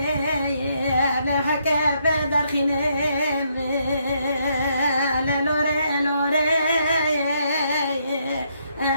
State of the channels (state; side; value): inverted; both; correlation -0.74